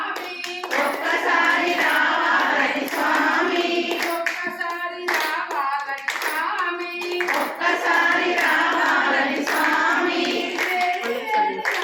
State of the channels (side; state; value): both; identical; correlation 1.00